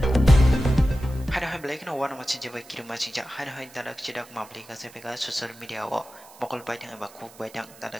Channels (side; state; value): right; noise; hiss, 22 dB below the sound